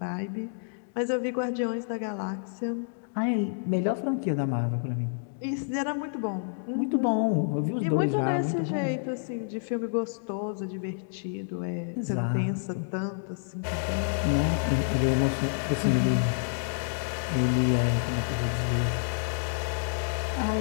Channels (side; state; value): right; silent; digital silence